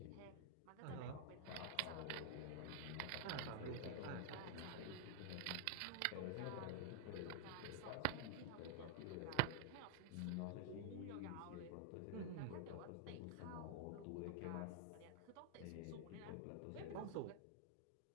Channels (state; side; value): different; both; correlation 0.00